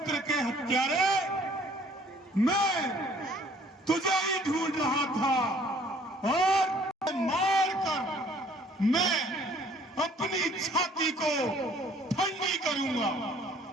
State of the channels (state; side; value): normal; both; correlation 0.57